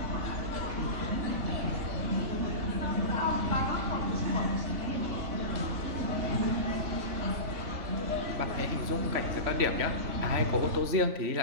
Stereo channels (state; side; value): late; left; 3.4 ms